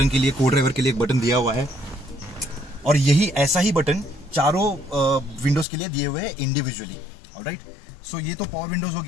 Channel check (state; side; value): drops out; right; at 5.7 s